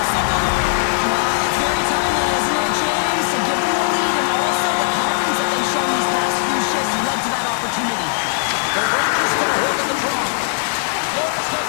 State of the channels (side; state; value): right; silent; 63 dB below the other